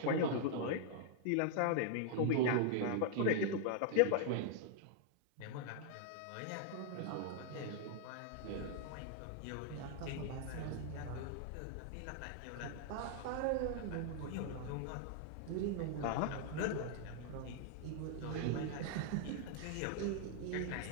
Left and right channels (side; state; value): both; different; correlation -0.01